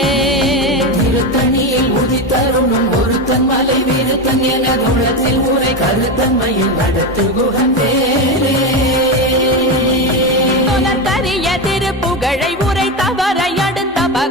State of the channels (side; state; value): both; normal; correlation 0.15